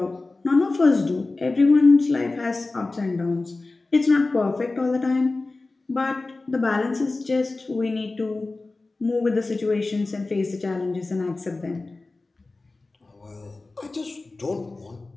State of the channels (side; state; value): right; quieter; 3.3 dB